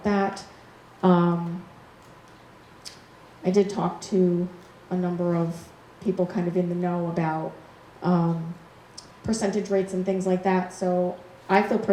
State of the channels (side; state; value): both; identical; correlation 1.00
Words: that. I did talk to a number of people kind of in the know about percentage rates and things like that. So I feel